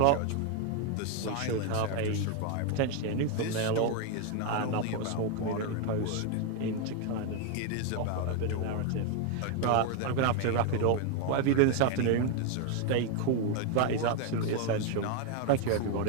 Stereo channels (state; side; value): different; both; correlation 0.01